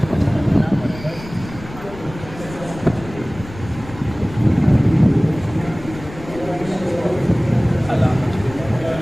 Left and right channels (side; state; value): left; noise; rumble, 15 dB below the sound